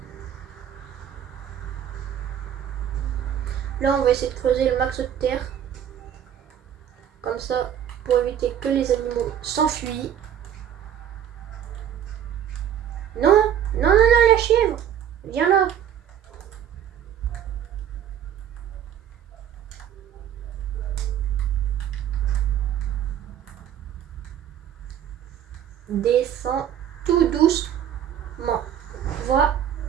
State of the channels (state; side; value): quieter; left; 9.7 dB